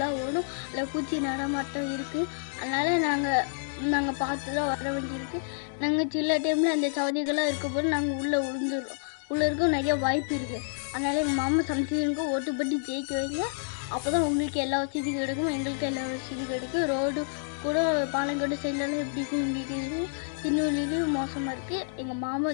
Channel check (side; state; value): right; silent; digital silence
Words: ஓடும். அதில் பூச்சி நடமாட்டம் இருக்குது. அதனால் நாங்கள் பார்த்து தான் வர வேண்டியிருக்கு. நாங்கள் சில டைமில் அந்த சவதிகளாக இருக்கும்போது நாங்கள் உள்ளே விழுந்துடுறோம். உள்ளே இருக்க நிறைய வாய்ப்பு இருக்குது. அதனால் எங்கள் மாமா சம்திங்க்கு ஓட்டு போட்டு ஜெயிக்க வைங்க. அப்போ தான் உங்களுக்கு எல்லா வசதியும் கிடைக்கும், எங்களுக்கு எல்லா வசதியும் கிடைக்கும். ரோடு கூட பாலங்கோட்டை சைட்லலாம் எப்படி இருக்கும் உங்களுக்கு தெரியும். திருநெல்வேலியும் மோசமாக இருக்குது. எங்கள் மாமா